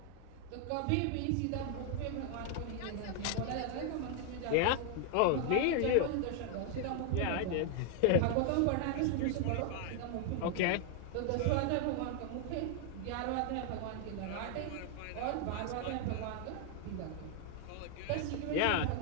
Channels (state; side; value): different; both; correlation 0.00